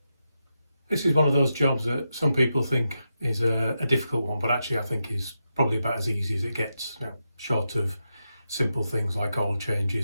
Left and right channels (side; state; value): both; inverted; correlation -0.87